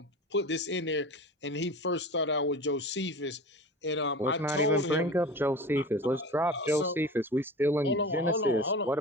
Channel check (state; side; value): normal; both; correlation 0.34